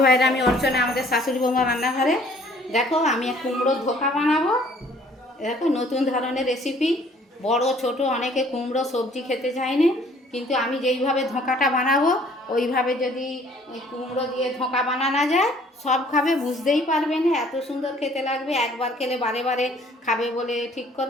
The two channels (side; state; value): both; normal; correlation 0.57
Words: ভাইরা, আমি অর্চনা, আমাদের শাশুড়ি বৌমা রান্নাঘরে। দেখো আমি কুমড়োর ধোকা বানাবো। দেখো নতুন ধরনের রেসিপি। বড় ছোট অনেকে কুমড়ো সবজি খেতে চায় না, কিন্তু আমি যেইভাবে ধোকাটা বানাবো ওইভাবে যদি কুমড়ো দিয়ে ধোকা বানানো যায় সব খাবে, বুঝতেই পারবে না, এত সুন্দর খেতে লাগবে। একবার খেলে বারে বারে খাবে বলে ঠিক